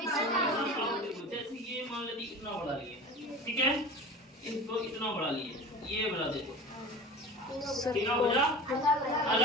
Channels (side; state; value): both; normal; correlation 0.35